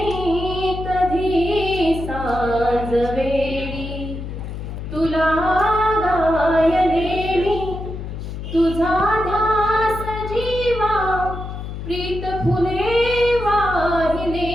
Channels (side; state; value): left; noise; hum, 8 dB below the sound